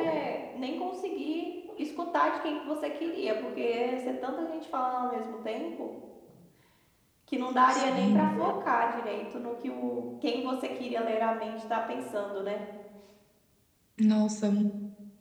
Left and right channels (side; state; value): both; identical; correlation 1.00